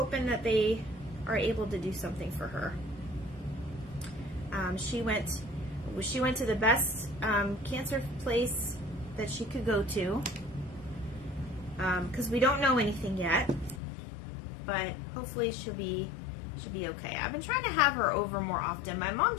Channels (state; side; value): drops out; right; at 13.8 s